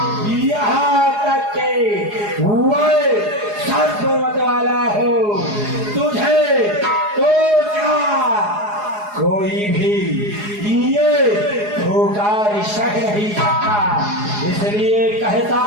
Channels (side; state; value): left; late; 4.8 ms